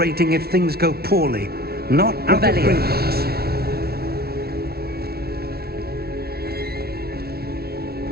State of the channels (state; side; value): late; left; 0.45 ms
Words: if things go poorly. Not out of Revelio. Gringotts.